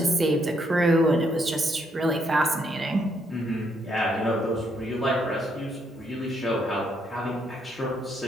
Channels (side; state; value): both; normal; correlation 0.74